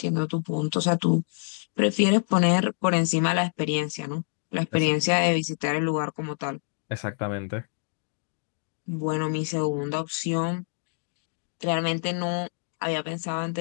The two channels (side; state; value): right; silent; digital silence